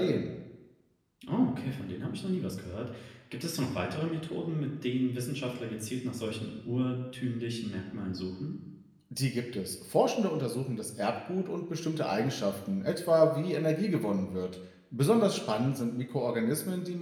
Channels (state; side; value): identical; both; correlation 1.00